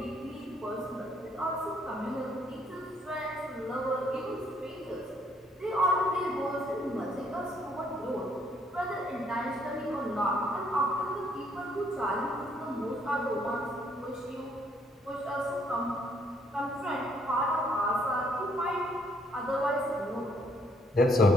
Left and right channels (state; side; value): normal; both; correlation 0.68